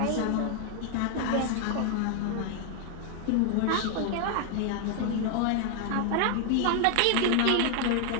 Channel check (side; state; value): both; different; correlation 0.00